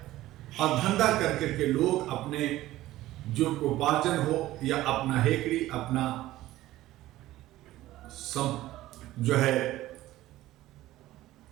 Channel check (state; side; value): quieter; left; 15.7 dB